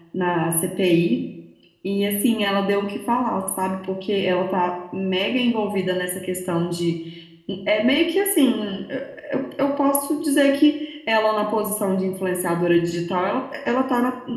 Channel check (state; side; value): identical; both; correlation 1.00